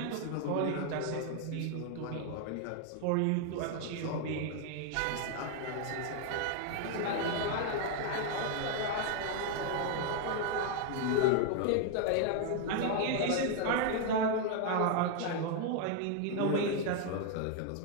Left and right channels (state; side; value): different; both; correlation 0.00